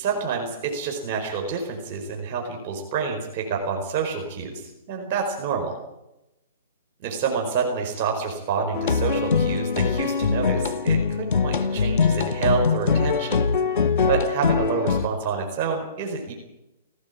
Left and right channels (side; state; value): both; inverted; correlation -0.46